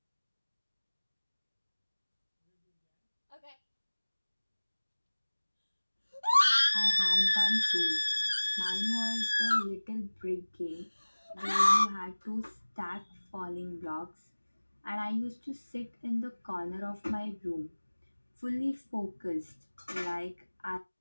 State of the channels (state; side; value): inverted; both; correlation -1.00